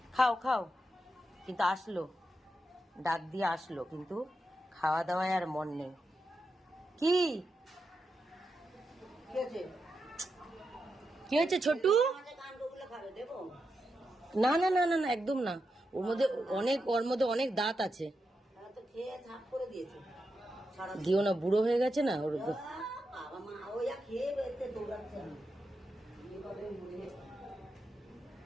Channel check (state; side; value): normal; both; correlation 0.87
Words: খাও খাও, কিন্তু আসলো, ডাক দিয়ে আসলো, কিন্তু খাওয়া দাওয়ায় আর মন নেই। কি কি হয়েছে ছোটু? না না না না না, একদম না। ওর মধ্যে অনেক দাঁত আছে। দিও না, বুড়ো হয়ে গেছে না ওর।